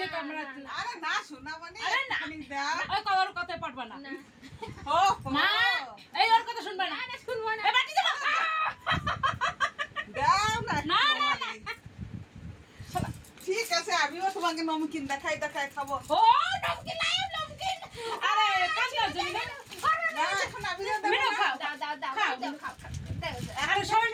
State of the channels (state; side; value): identical; both; correlation 1.00